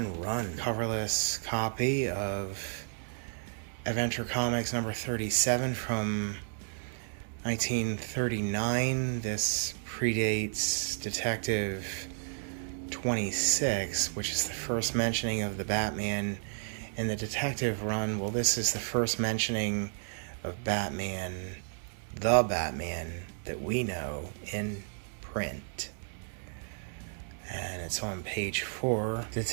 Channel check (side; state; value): left; silent; digital silence